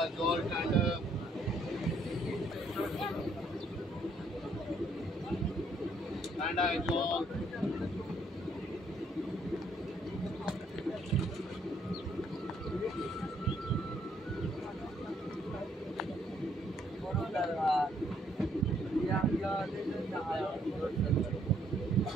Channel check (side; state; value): both; normal; correlation 0.68